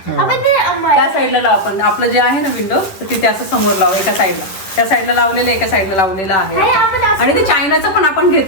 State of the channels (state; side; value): late; right; 10 ms